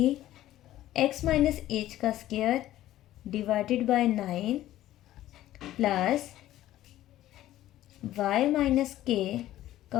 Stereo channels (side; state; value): right; quieter; 14.0 dB